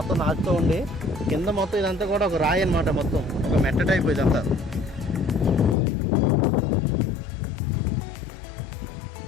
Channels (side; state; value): right; drops out; at 5.8 s